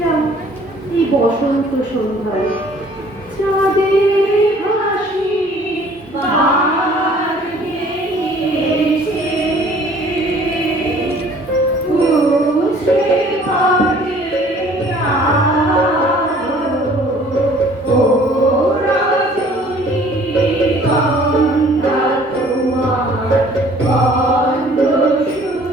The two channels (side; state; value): both; normal; correlation 0.54